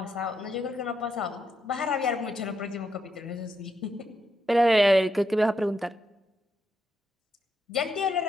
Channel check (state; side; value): normal; both; correlation 0.81